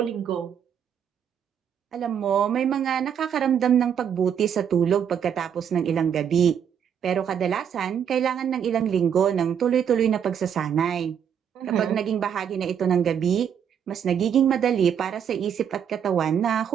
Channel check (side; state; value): left; quieter; 8.3 dB